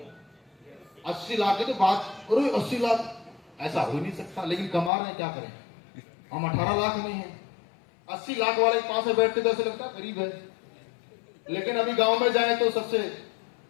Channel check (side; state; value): right; drops out; at 4.9 s